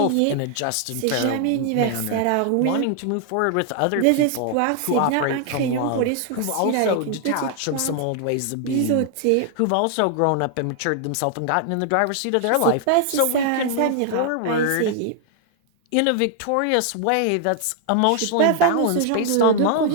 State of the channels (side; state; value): both; different; correlation 0.00